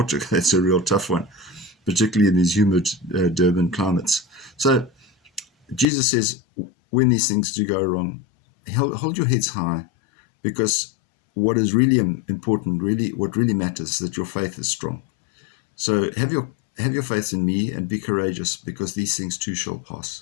That's a real tough one, particularly in these humid Durban climates. So Jesus says, when these things do go wrong, hold your heads high, because what is really important, what really matters, is that your faith is strong. So have your faith in me and be courageous, because these things too shall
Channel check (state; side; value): drops out; right; at 5.9 s